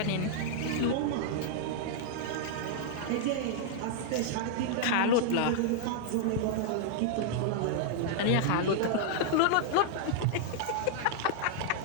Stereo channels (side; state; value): both; different; correlation -0.01